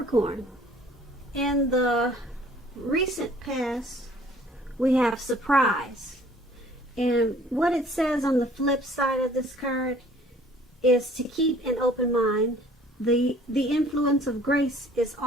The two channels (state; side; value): normal; both; correlation 0.55